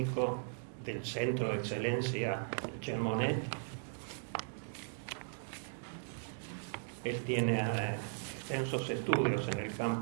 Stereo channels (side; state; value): left; silent; digital silence